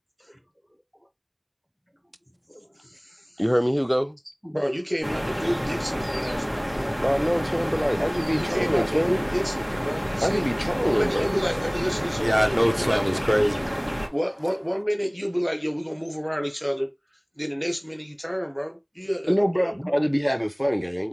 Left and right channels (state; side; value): identical; both; correlation 1.00